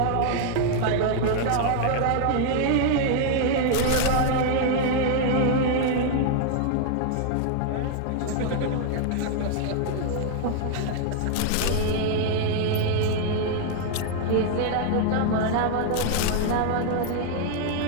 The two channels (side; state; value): both; different; correlation 0.00